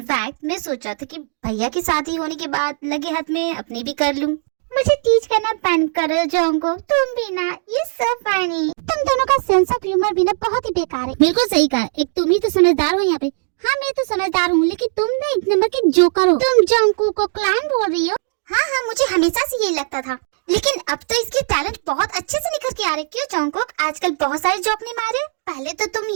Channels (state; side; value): silent; left; 66 dB below the other